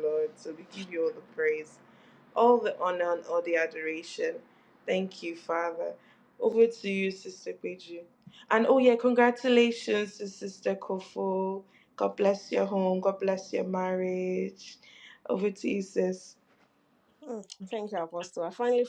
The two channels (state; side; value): identical; both; correlation 1.00